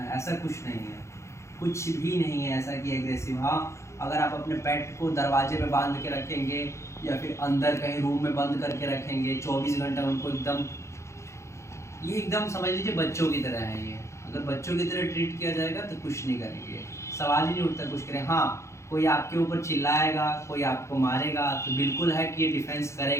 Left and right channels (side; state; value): right; late; 0.14 ms